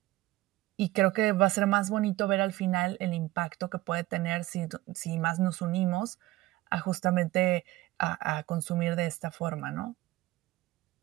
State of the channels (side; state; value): left; quieter; 17.7 dB